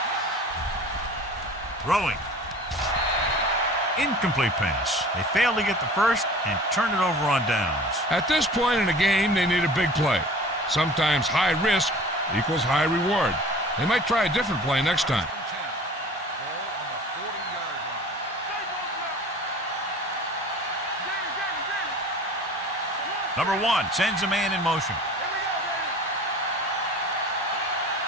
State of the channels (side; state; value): both; normal; correlation 0.43